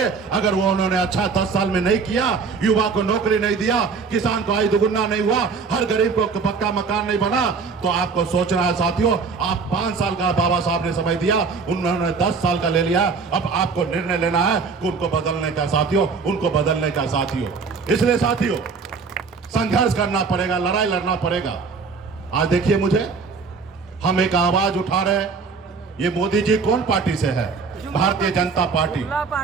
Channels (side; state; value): left; quieter; 5.0 dB